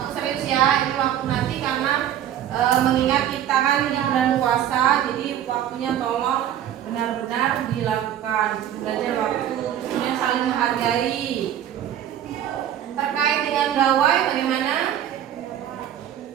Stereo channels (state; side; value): quieter; left; 10.7 dB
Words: Serius ya, ini waktu nanti karena mengingat kita kan di bulan puasa, jadi waktunya tolong benar-benar dilakukan. Disiplin belajar waktu, kemudian saling menghargai. Terkait dengan gawai bagaimana?